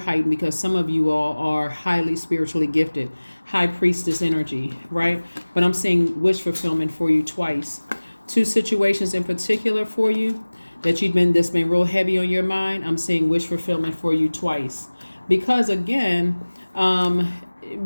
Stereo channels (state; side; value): inverted; both; correlation -1.00